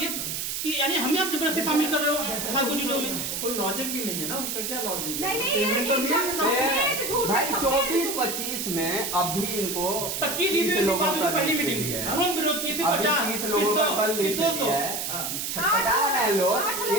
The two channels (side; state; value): right; noise; hiss, 3 dB below the sound